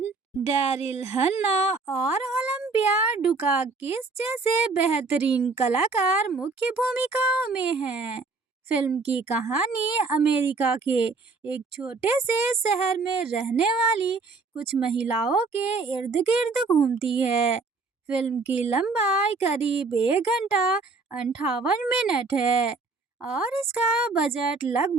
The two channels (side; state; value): left; quieter; 4.0 dB